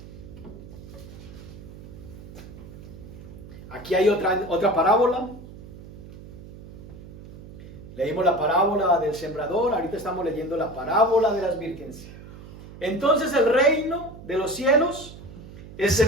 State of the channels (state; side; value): noise; right; hum, 16 dB below the sound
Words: Aquí hay otra parábola. Leímos la parábola del sembrador, ahorita estamos leyendo la parábola de las vírgenes. Entonces el reino de los cielos es